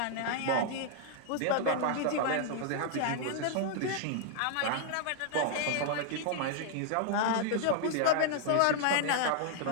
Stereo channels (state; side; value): different; both; correlation 0.00